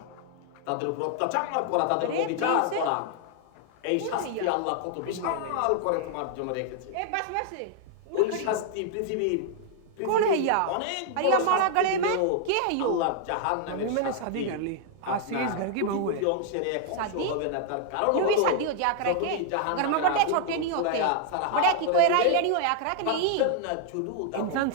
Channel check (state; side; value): different; both; correlation 0.00